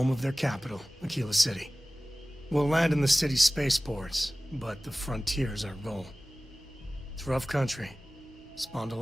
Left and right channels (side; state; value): both; normal; correlation 0.98